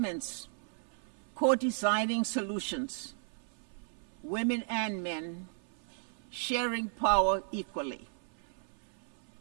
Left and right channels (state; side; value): silent; left; 54 dB below the other